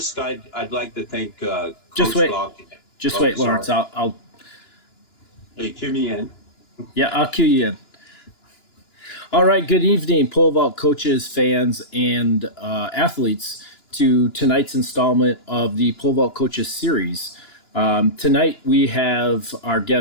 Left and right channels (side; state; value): right; late; 2.9 ms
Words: I'd like to thank Just Coach wait, Block. just Oh, wait, Lawrence. sorry. I'll Hey, cue me in. yeah, I'll cue you in. All right. Good evening, pole vault coaches, fans, and athletes, to tonight's installment of the pole vault coaches series. Tonight we have our